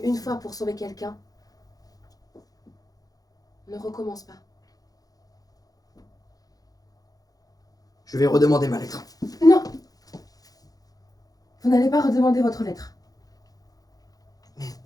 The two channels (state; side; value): late; right; 0.18 ms